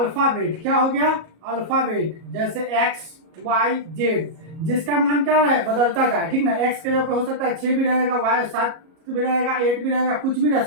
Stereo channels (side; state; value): left; late; 37 ms